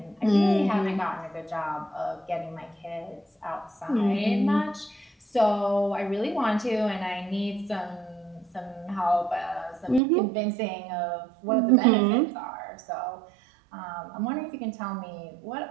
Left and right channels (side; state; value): left; drops out; at 10.0 s